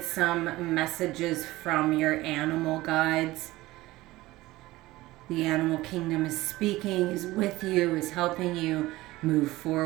some messages from your animal guides. The animal kingdom is speaking, is with you, is helping you move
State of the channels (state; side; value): quieter; left; 18.4 dB